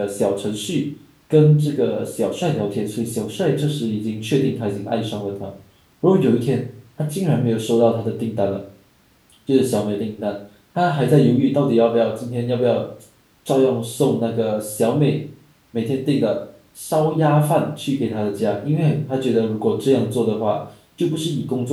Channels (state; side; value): identical; both; correlation 1.00